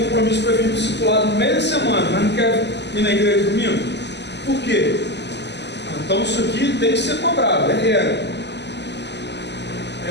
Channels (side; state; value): right; late; 0.50 ms